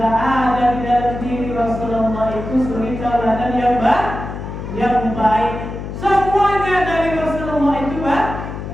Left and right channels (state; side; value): noise; left; hum, 8 dB below the sound